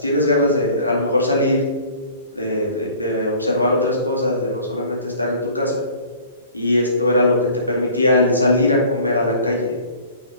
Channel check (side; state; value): both; inverted; correlation -0.49